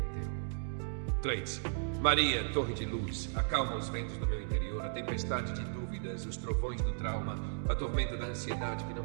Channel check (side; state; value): left; silent; digital silence